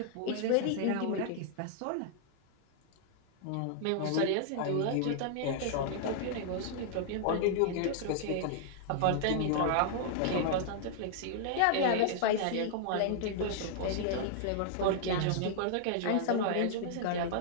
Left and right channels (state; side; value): different; both; correlation -0.01